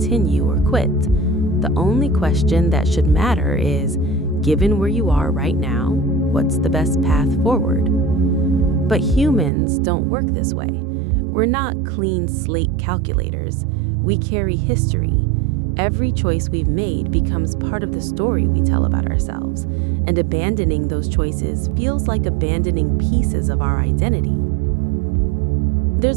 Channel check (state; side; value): drops out; left; at 9.5 s